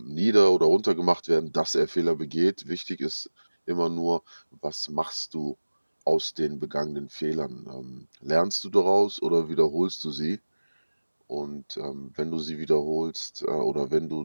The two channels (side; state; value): both; inverted; correlation -1.00